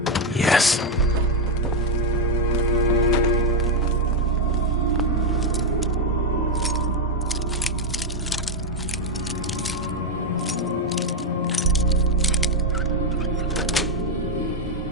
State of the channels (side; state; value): both; normal; correlation 0.04